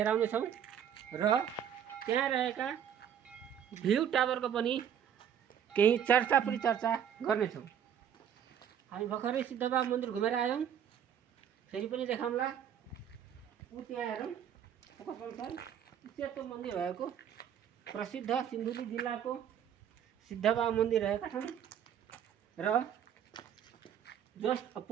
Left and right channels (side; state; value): left; quieter; 9.1 dB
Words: छौँ र त्यहाँ रहेका भ्यू टावरको पनि केही चर्चा गर्नेछौँ। हामी भर्खरै सिद्धबाबा मन्दिर घुमेर आयौँ, फेरि पनि देखाउँला। त्यहाँ हेरौँ, सेतो मन्दिर भएको प्रसिद्ध सिन्धुली जिल्लाको सिद्धबाबा मन्दिर रहेका छन् र जस्ट